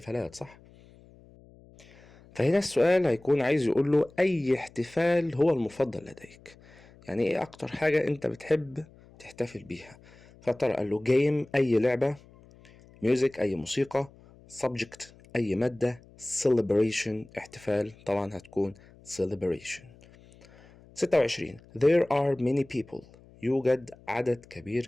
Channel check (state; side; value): noise; left; hum, 25 dB below the sound